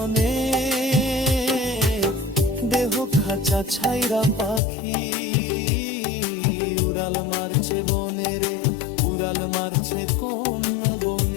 দেহ খাঁচা ছাইরা পাখি উড়াল মারছে বনে রে, উড়াল মারছে কোন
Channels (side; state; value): right; drops out; at 4.6 s